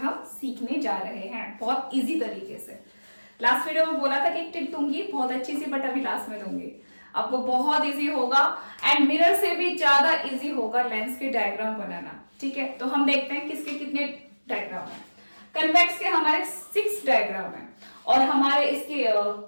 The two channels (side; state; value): both; inverted; correlation -1.00